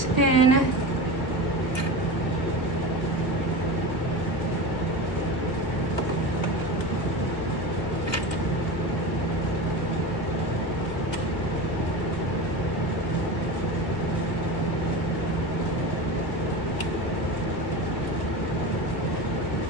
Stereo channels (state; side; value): late; right; 1.7 ms